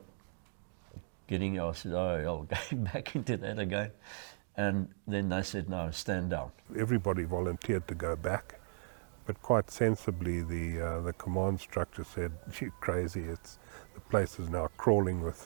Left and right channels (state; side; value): silent; left; 53 dB below the other